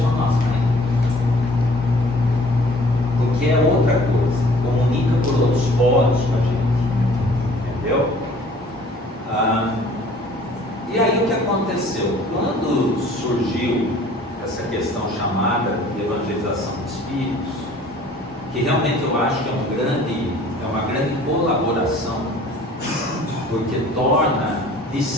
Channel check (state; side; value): normal; both; correlation 0.52